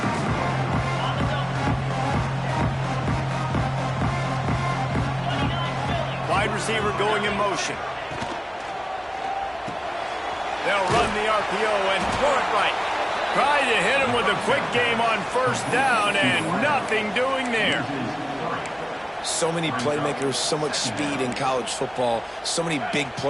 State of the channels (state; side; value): identical; both; correlation 1.00